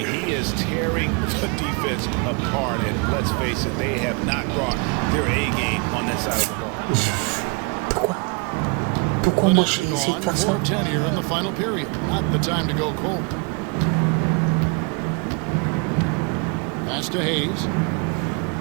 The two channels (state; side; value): quieter; left; 30.6 dB